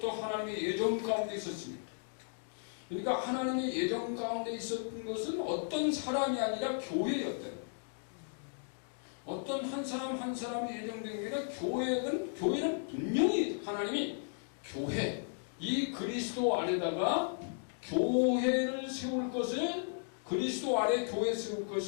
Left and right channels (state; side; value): silent; right; digital silence